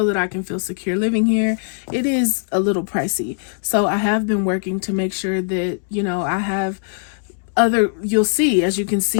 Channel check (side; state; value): right; silent; digital silence